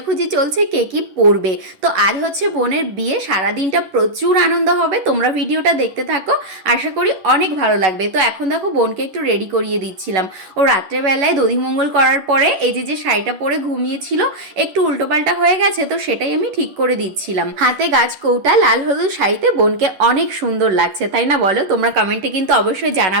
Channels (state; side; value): late; left; 11 ms